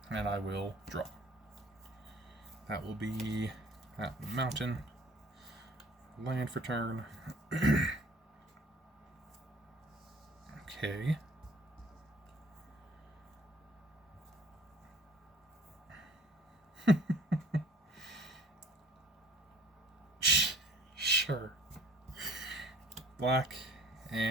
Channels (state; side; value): normal; both; correlation 0.52